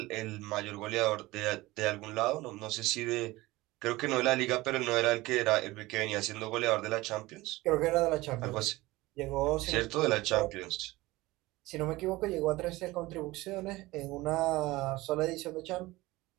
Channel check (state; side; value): quieter; left; 19.7 dB